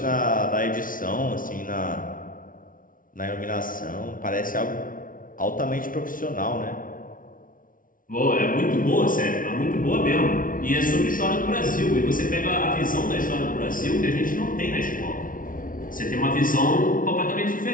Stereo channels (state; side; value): late; right; 0.39 ms